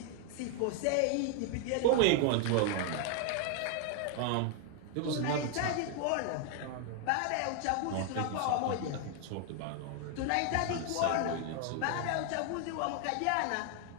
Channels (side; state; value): both; different; correlation 0.00